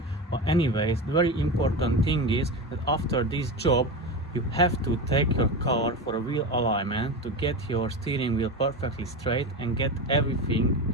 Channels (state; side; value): normal; both; correlation 0.22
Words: But anyways, the very important thing is that after this job you have to take your car for a wheel alignment to get your steering wheel perfectly straight and get everything